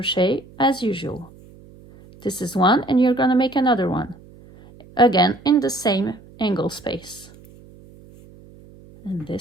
as usual. This is one, and you're going to make another one again in the same angle space, and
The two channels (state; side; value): noise; right; hum, 23 dB below the sound